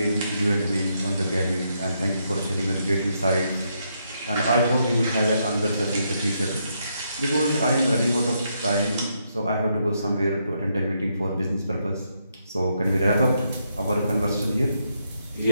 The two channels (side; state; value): both; inverted; correlation -0.78